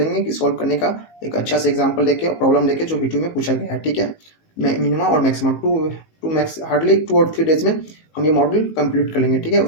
कि सॉल्व करने का एक अच्छा सा एग्जांपल लेके और प्रॉब्लम लेके जो वीडियो में पूछा गया है, ठीक है। मिनिमा और मैक्सिमा हार्डली 2 और 3 डेज में हम ये मॉड्यूल कंप्लीट कर लेंगे, ठीक है।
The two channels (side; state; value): right; late; 19 ms